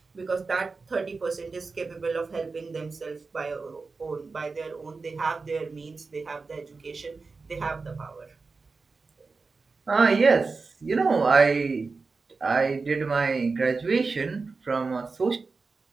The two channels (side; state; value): left; quieter; 4.2 dB